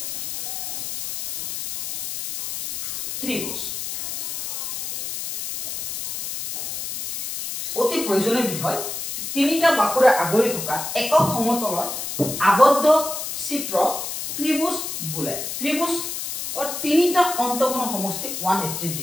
ত্ৰিভুজ অতি প্ৰয়োজনীয় বিষয় তিনিটা বাহুৰে আগুৰি থকা একক সমতলৰ আবদ্ধ চিত্ৰ ত্ৰিভুজ বোলে ত্ৰিভুজ তিনিটা অন্তকোণৰ সমষ্টি 180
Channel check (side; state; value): left; noise; hiss, 5 dB below the sound